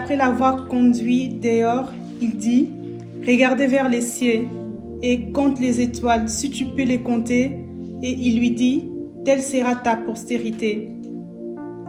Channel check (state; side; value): identical; both; correlation 1.00